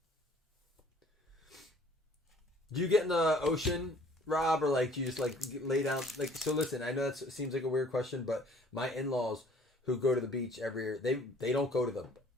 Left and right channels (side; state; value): both; normal; correlation 0.55